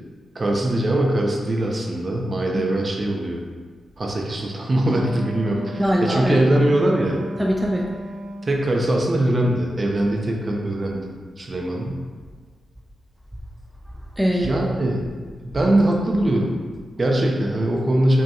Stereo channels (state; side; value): normal; both; correlation 0.92